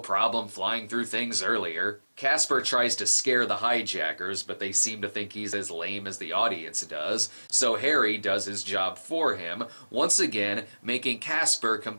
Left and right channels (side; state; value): both; inverted; correlation -1.00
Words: flying through things earlier. Casper tries to scare the hijackers, but they seem to think he's as lame as the audience does, so Harry does his job for him, once again making Casper